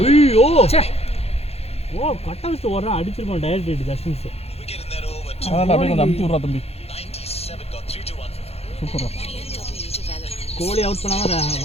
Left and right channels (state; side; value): late; right; 0.30 ms